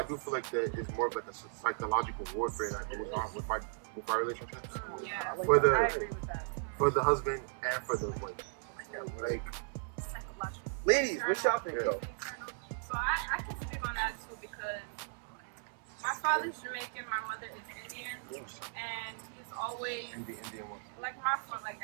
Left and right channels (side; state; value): left; silent; 54 dB below the other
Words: do feel like that it's more of like a psychological warfare that goes on with our relationships. Yeah, For the- I agree with that. For the husband and for the wife. Like, Psychological. Ladies, what y'all think though? So I can speak on that too because my father's Jamaican, my mother is Indian, and he's always in the Indian one. like my father, like